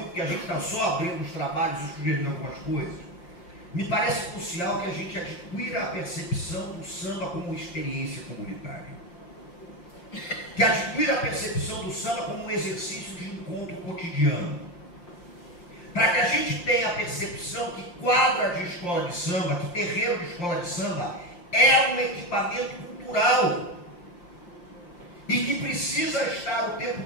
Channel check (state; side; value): late; right; 5.7 ms